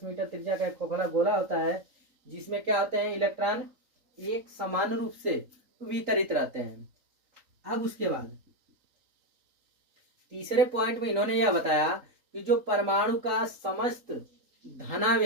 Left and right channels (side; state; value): left; late; 3.8 ms